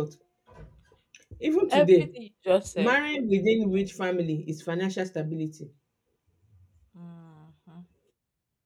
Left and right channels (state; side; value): identical; both; correlation 1.00